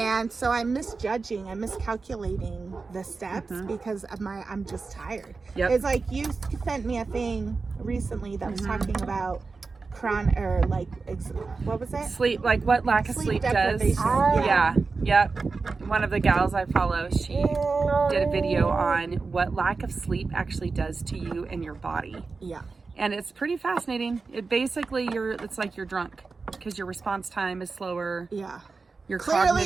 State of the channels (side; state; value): left; quieter; 4.3 dB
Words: so I'm miscalculating the steps because of I'm just tired. Yep. It's like you sent me a thing recently that was talking about what was it? Sleep, like what lack of sleep does. Yeah. Yep. One of the gals I follow, she did a video on what lack of sleep actually does to you and your body. Yeah. And it's pretty fascinating. It basically, it's like you're drunk because your response time is slower. Yeah. Your